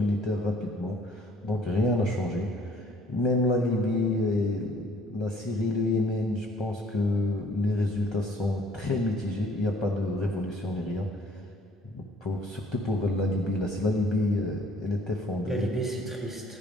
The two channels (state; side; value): normal; both; correlation 0.58